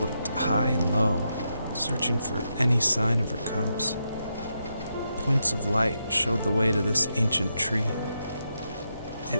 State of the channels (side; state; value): both; inverted; correlation -0.84